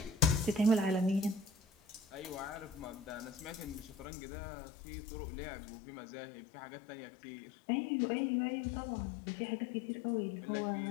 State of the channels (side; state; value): right; drops out; at 4.0 s